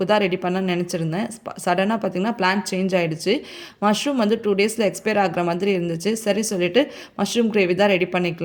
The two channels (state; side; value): identical; both; correlation 1.00